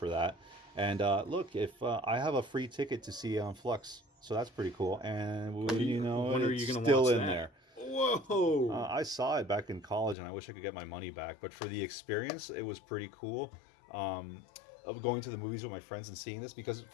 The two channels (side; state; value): right; drops out; at 10.2 s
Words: that. And look, if I have a free ticket to see Flux, so that's pretty cool. And when are you gonna still in there. Whoa! I saw it back in college, and I wish I could get my money back. But for the experience, it was pretty cool. Of going to the movies with my friends and seeing this, because